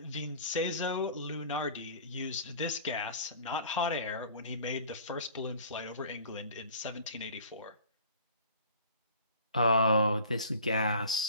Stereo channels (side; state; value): both; inverted; correlation -0.46